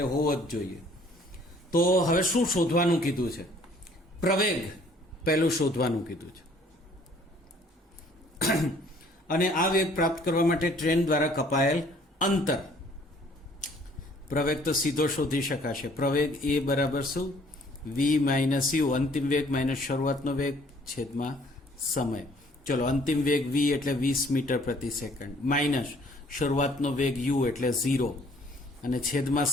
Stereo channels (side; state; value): both; normal; correlation 0.58